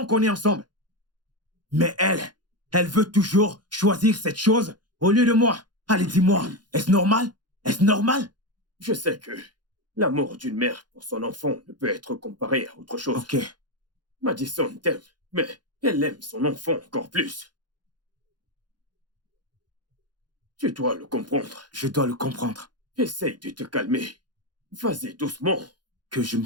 qu'on est ensemble. Mais elle veut toujours choisir cette chose au lieu de moi. Allez, dis-moi, est-ce normal? Est-ce normal? Je sais que l'amour d'une mère pour son enfant ne peut être comparé à autre chose. Ok. Madison t'aime, mais elle aime son enfant encore plus. Tu dois le comprendre. Je dois le comprendre. Essaye de te calmer. Vas-y doucement. Que je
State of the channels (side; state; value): left; late; 0.70 ms